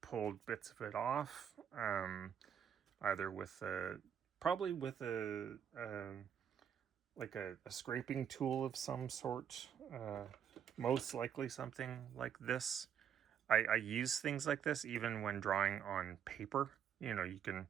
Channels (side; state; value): left; quieter; 8.7 dB